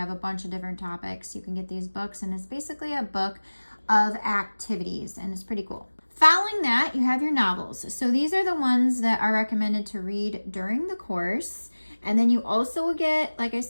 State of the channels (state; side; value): inverted; both; correlation -1.00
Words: a bunch of different topics. You can get these books, and it's basically a book of activities, and it's pretty cool. Following that, you have your novels. So these are the ones that are recommended to read during the course. And then you also will get, like I